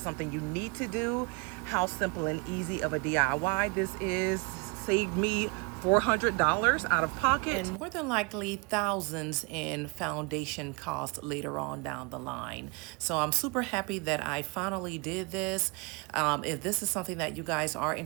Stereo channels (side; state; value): left; quieter; 30.2 dB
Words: something you need to do, how simple and easy of a DIY this is. Saved me $400 out of pocket, and more than likely thousands in foundation costs later on down the line. So I'm super happy that I finally did this. If this is something that you guys are